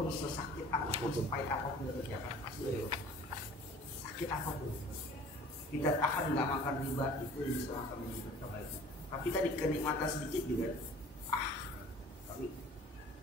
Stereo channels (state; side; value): normal; both; correlation 0.47